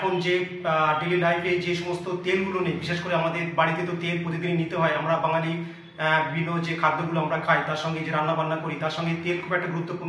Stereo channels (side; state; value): both; identical; correlation 1.00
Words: যে ডেলি লাইফে যে সমস্ত তেলগুলো নেই, বিশেষ করে আমাদের বাড়িতে তো তেল প্রতিদিনই নিতে হয়। আমরা বাঙালি বিভিন্ন যে খাদ্যগুলো আমরা খাই, তার সঙ্গে যে রান্না বান্না করি, তার সঙ্গে তেল খুব একটা